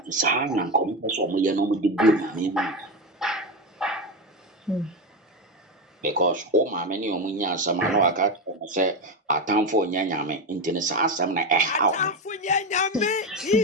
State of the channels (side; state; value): both; normal; correlation 0.14